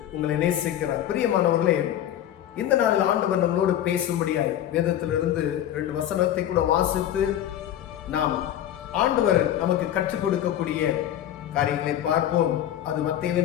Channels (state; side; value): quieter; right; 11.5 dB